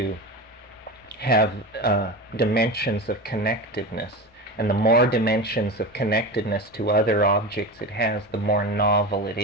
have dimensions of connectedness. And the more dimensions of connectedness to other objects it has, the more novel it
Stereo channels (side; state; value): both; normal; correlation 0.25